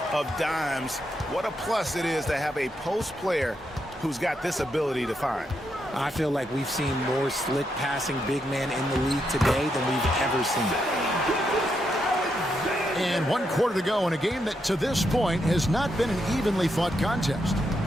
of dimes. What a plus it is to have a post player who's got this ability to find. I feel like we've seen more slick passing big man in the league today than we've ever seen. And 1 quarter to go in a game that to this point has not been an evenly fought contest.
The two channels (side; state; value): both; normal; correlation 0.81